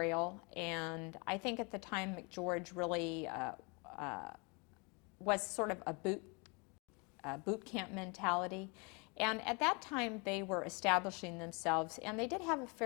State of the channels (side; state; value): right; quieter; 30.9 dB